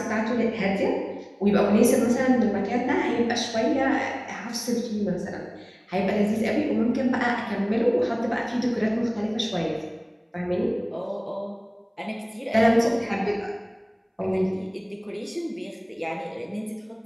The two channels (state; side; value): identical; both; correlation 1.00